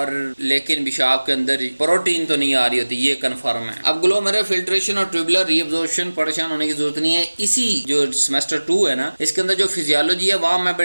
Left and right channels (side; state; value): both; inverted; correlation -1.00